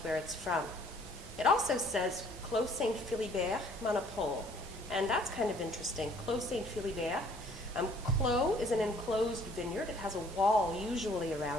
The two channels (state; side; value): normal; both; correlation 0.58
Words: where it's from. It also says Clos Saint-Philibert Monopole, and that's kind of interesting. Clos Saint-Philibert. Clos is an enclosed vineyard. It has a wall usually